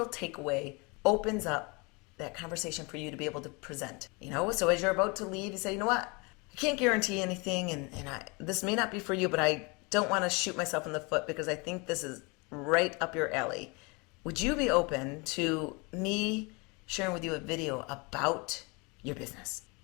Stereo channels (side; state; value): right; quieter; 28.9 dB